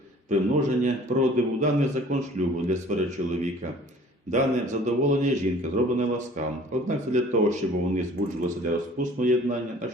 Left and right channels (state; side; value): normal; both; correlation 0.50